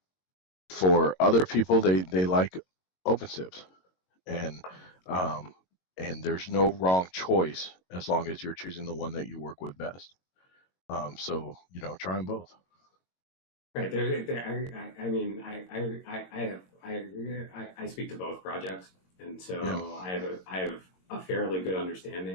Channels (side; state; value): right; late; 22 ms